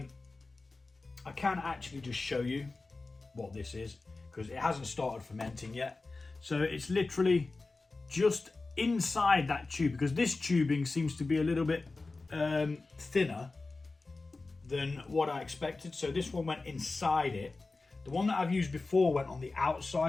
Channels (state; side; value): quieter; right; 3.6 dB